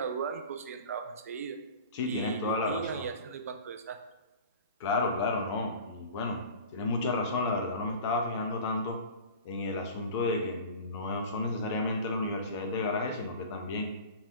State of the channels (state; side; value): inverted; both; correlation -0.38